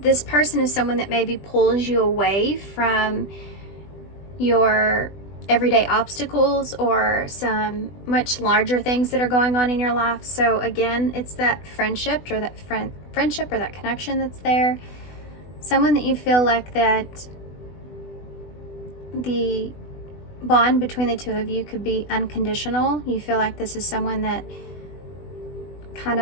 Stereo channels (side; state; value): right; late; 20 ms